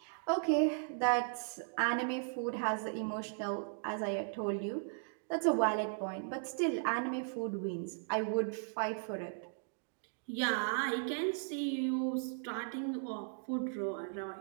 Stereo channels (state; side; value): silent; left; digital silence